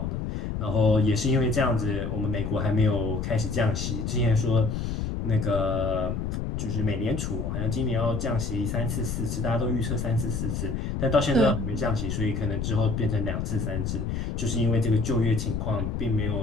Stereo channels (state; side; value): noise; left; rumble, 2 dB below the sound